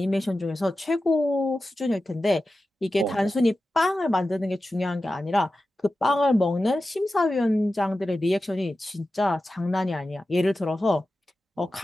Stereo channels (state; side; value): normal; both; correlation 0.93